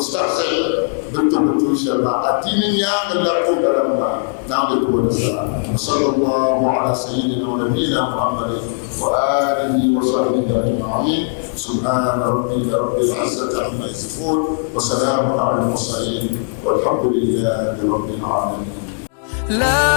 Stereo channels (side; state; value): right; silent; 67 dB below the other